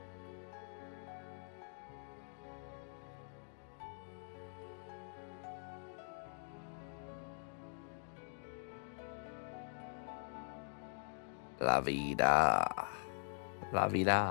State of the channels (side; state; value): right; silent; digital silence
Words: La vida. La